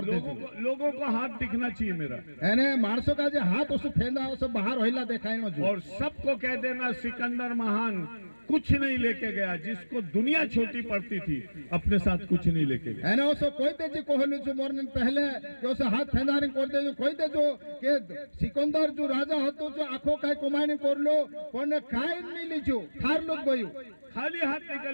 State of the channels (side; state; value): both; inverted; correlation -1.00